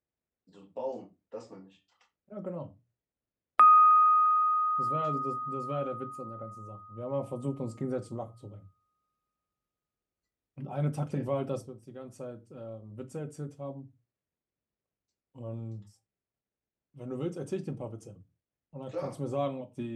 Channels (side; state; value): both; identical; correlation 1.00